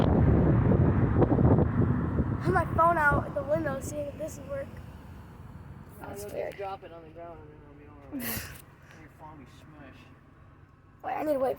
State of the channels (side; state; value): both; identical; correlation 1.00